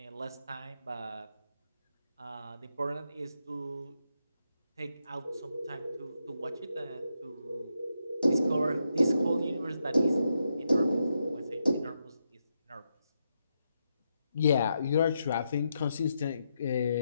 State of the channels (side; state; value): both; inverted; correlation -0.83